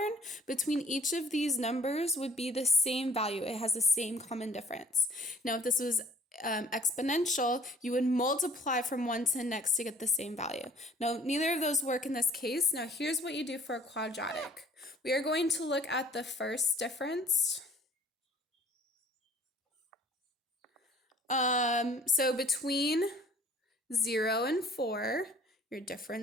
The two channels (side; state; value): both; normal; correlation 0.54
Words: between each of these numbers would be the same value. It has the same common difference. Now, if this was exponential, you would multiply from one to the next to get the same value. Now, neither of those work in this case. Now, here's what you do for a quadratic. We are going to look at the first difference. So between 0 and 4, your